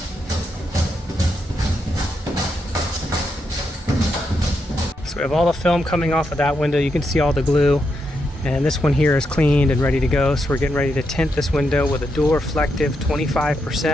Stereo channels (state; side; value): normal; both; correlation 0.82